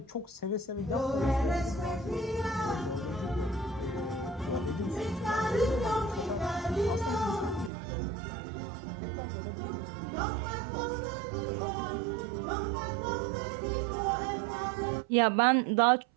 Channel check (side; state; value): left; drops out; at 7.7 s